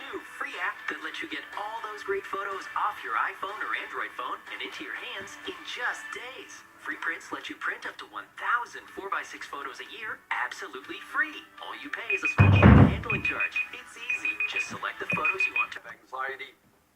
new free app that lets you get all those great photos off your iPhone or Android phone and into your hands in just days. FreePrints lets you print up to 1,000 4x6 photos a year absolutely free. All you pay is a small handling charge. It's easy. Just select the photos you want to. Anxiety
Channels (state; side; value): identical; both; correlation 1.00